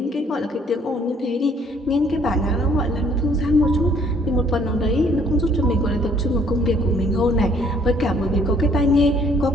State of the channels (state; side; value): normal; both; correlation 0.61